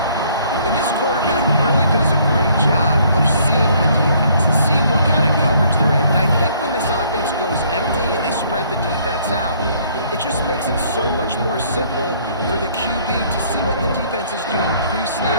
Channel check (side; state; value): both; inverted; correlation -0.62